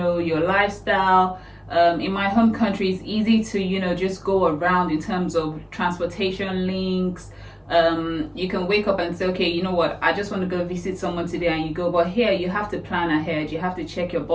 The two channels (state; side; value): identical; both; correlation 1.00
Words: your lifestyle. In my home country, it's easy to, you know, just go around in terms of transportation links. You can wake up and say, okay, you know what, I just want to go visit someone today, and you go. But here, you have to plan ahead. You have to check your